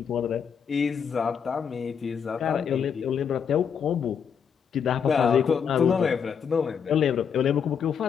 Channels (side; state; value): right; quieter; 7.2 dB